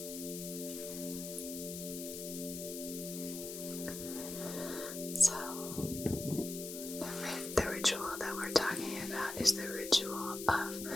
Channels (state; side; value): noise; left; hiss, 8 dB below the sound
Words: So, the ritual that we're talking about is the ritual